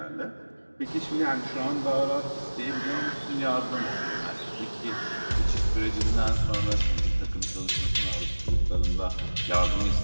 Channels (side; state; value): both; inverted; correlation -1.00